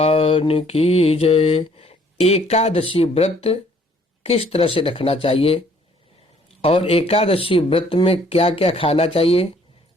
की जय। एकादशी व्रत किस तरह से रखना चाहिए और एकादशी व्रत में क्या क्या खाना चाहिए,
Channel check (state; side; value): normal; both; correlation 0.61